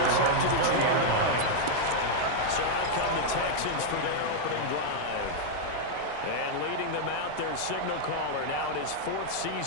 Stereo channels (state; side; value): different; both; correlation 0.00